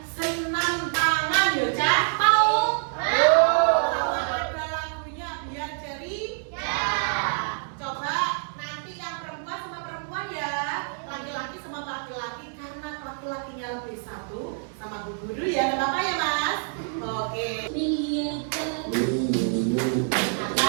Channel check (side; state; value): left; silent; 61 dB below the other